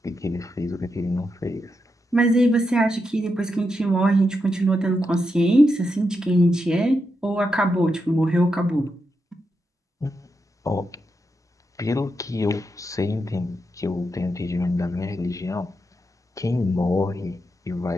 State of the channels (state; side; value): normal; both; correlation 0.85